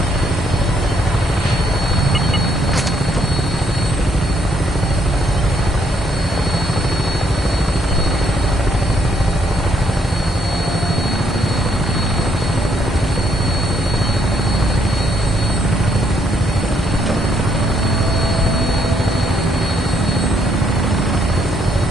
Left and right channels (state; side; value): normal; both; correlation 0.71